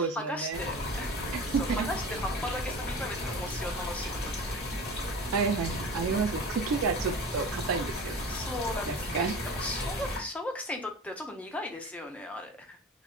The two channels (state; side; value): normal; both; correlation 0.35